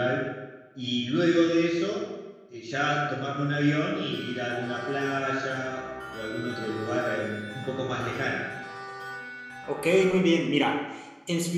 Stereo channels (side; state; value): both; identical; correlation 1.00